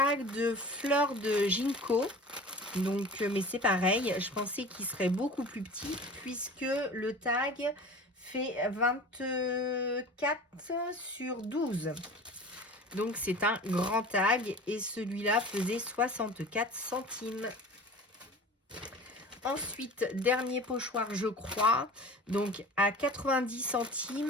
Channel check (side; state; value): both; normal; correlation 0.39